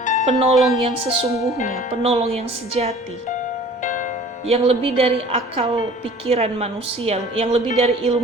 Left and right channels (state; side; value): normal; both; correlation 0.47